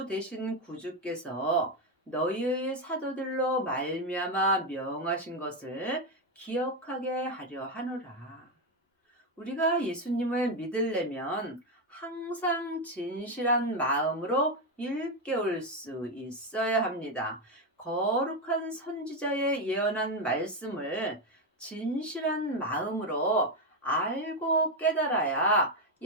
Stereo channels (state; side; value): normal; both; correlation 0.08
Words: 되신 구주께서 너희의 사도들로 말미암아 명하신 것을 기억하게 하려 하노라. 우리가 예수님을 믿으려면 항상 진실한 마음으로 일깨울 수 있어야 합니다. 거룩한 선지자의 예언한 말씀을 진실한 마음으로 알고 깨달아야